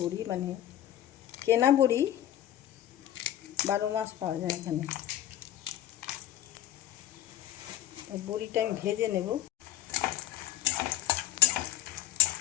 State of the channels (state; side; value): quieter; right; 12.6 dB